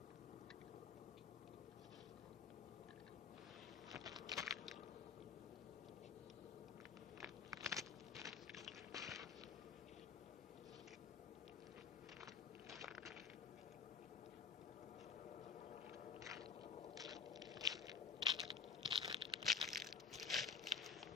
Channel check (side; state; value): right; quieter; 6.7 dB